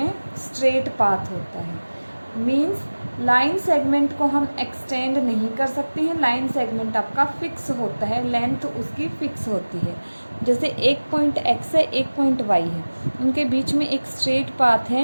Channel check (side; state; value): both; inverted; correlation -1.00